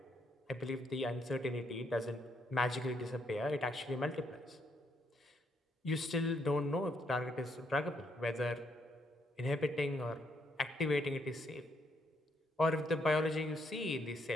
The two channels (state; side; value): normal; both; correlation 0.74